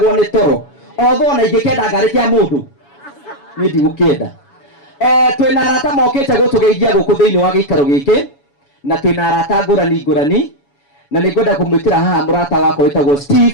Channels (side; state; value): right; late; 7.1 ms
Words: nĩ toro otho na ingĩkenda ngarĩ kĩa mũndũ niĩ ndigũkĩenda. Twĩna arata mokĩte gũtũgeithia gũkũ thĩinĩ wa gĩikaro gĩkĩ na twĩna arata ngũrani na nĩngwenda kũmwĩtĩra haha mũrata wakwa wĩtagwo